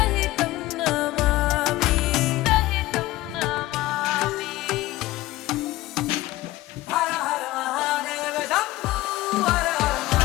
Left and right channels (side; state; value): right; quieter; 17.5 dB